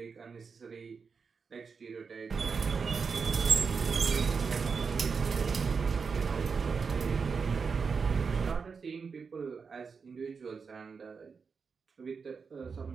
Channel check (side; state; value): left; quieter; 5.4 dB